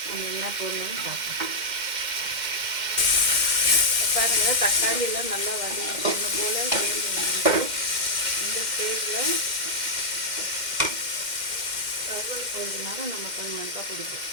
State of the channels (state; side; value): late; left; 2.1 ms